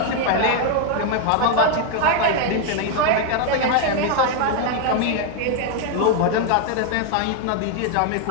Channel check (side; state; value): both; different; correlation 0.01